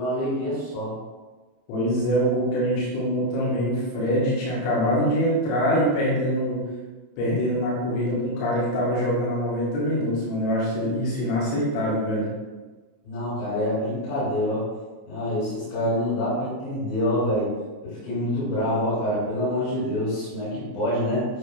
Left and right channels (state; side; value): late; right; 30 ms